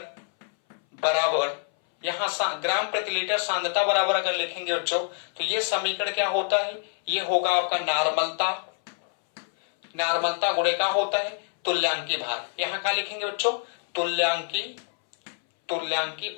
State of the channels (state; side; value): silent; right; 59 dB below the other